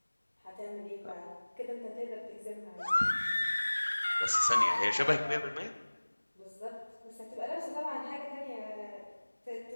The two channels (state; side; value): inverted; both; correlation -1.00